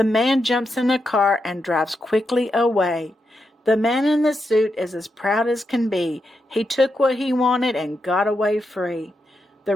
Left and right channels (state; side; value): normal; both; correlation 0.85